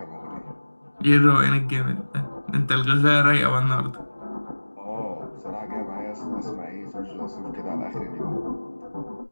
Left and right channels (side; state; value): both; inverted; correlation -1.00